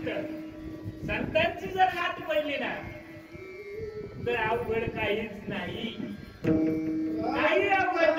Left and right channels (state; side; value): identical; both; correlation 1.00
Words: संतांची जर गाठ पडली ना तर अवघड काहीच नाही, काही अवघड